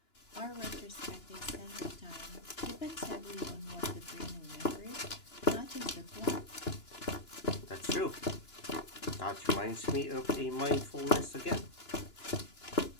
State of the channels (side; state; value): right; late; 2.9 ms